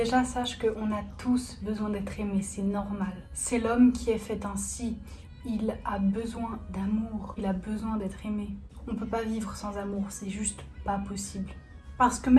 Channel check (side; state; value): both; identical; correlation 1.00